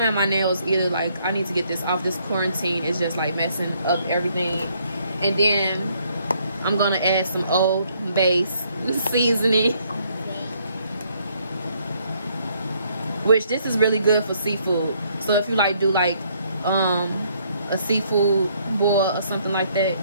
my nails either. Like I need to get this off. This quarantine is just like messing up everything. And then I'm gonna add some Old Bay seasoning, which this is really good for seafood. So if you like do like a seafood boil or something like that.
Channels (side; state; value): both; inverted; correlation -0.68